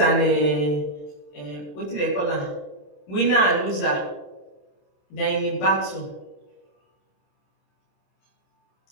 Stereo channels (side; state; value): right; late; 27 ms